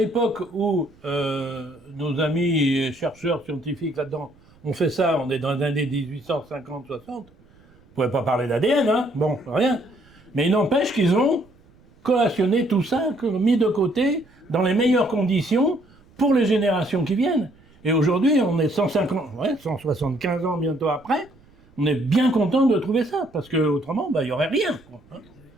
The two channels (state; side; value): noise; right; rumble, 29 dB below the sound